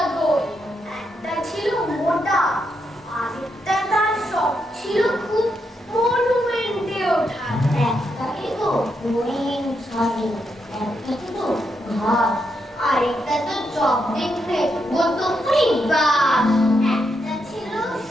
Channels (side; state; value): both; normal; correlation 0.81